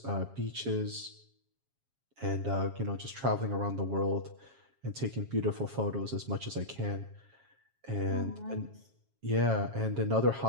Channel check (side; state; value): left; late; 7.4 ms